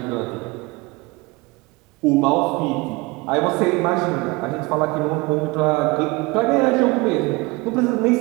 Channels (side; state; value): left; quieter; 24.3 dB